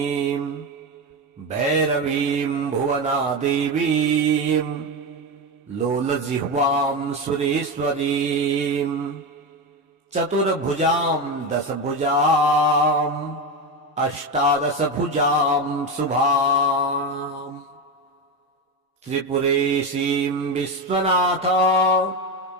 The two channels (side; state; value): both; normal; correlation 0.15